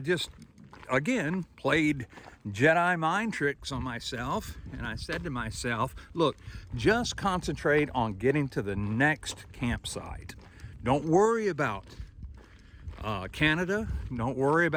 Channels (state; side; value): identical; both; correlation 1.00